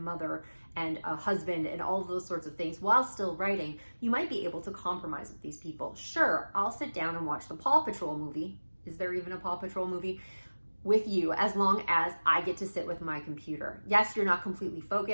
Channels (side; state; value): both; inverted; correlation -1.00